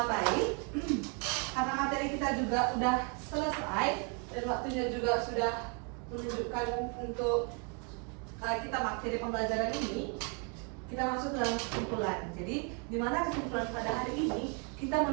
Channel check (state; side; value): quieter; left; 36.3 dB